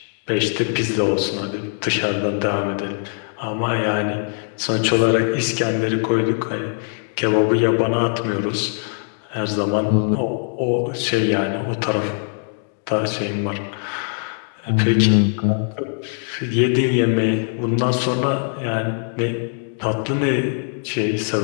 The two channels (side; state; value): right; silent; 62 dB below the other